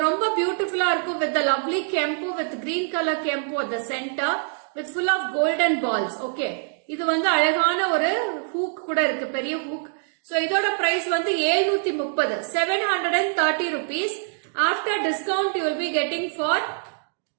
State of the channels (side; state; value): left; silent; digital silence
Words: ரொம்ப பியூட்டிஃபுல்லா இருக்கும் with the lovely kempu with green color kempu at the center. With full of golden balls. Okay. இது வந்து அழகான ஒரு hook கூட இருக்கு, பெரிய hook. So இதோட price வந்து 730. 730 rupees. After discount you will be getting for